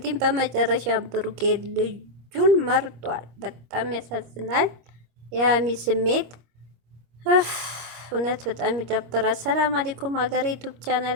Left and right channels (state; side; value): late; left; 25 ms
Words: በመጨረሻ ብሩኬ ልጁን መርጧል። በጣም ያሳዝናል። የሀሚ ስሜት እውነት በጣም ይደብራል። ሰላም አለይኩም ሀገሬ ዩቱብ